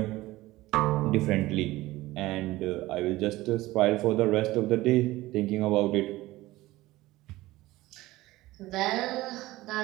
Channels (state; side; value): quieter; left; 18.0 dB